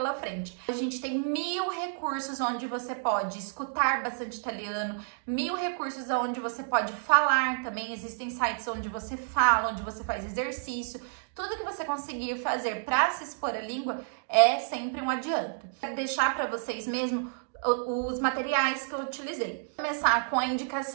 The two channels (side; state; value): left; silent; digital silence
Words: frente. A gente tem 1000 recursos onde você pode escutar bastante italiano, 1000 recursos onde você pode falar também, existem sites onde você fala, onde você faz exercício. Tudo que você conseguir fazer para se expor à língua é sempre um adianto. Quero deixar para vocês mesmo os materiais que eu utilizei. Vou começar com a